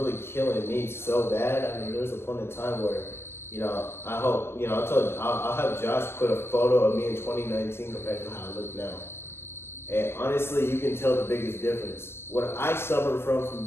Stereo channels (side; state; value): right; late; 0.12 ms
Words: killing me so bad. I mean, there was a point in time where, you know, I hope, you know, I'll have Josh put a photo of me in 2019 compared to how I look now. And honestly, you can tell the biggest difference. What I suffered from